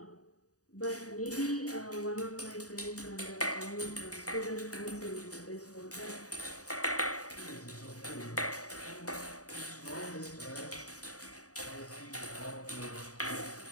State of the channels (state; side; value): late; right; 0.66 ms